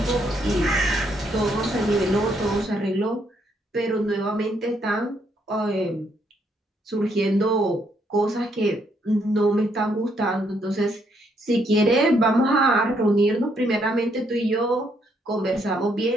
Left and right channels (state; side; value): normal; both; correlation 0.72